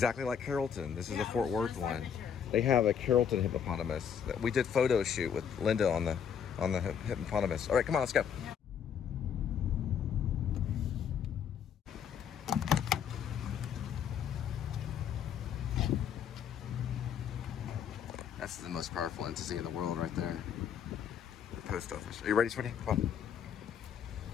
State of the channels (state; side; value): quieter; right; 7.9 dB